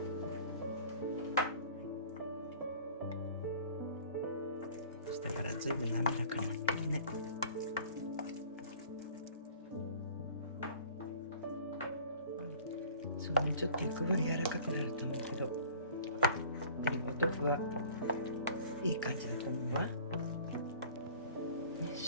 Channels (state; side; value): inverted; both; correlation -0.47